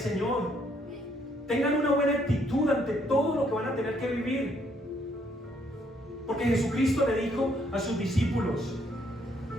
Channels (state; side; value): normal; both; correlation 0.70